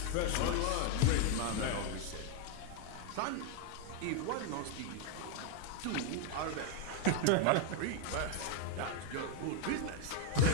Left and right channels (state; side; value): different; both; correlation 0.00